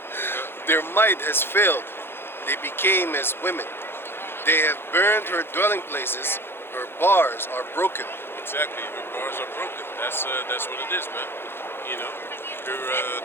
Their might has failed. They became as women. They have burned her dwelling places. Her bars are broken. Exactly. Her bars are broken. That's what it is, man.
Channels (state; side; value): late; right; 0.11 ms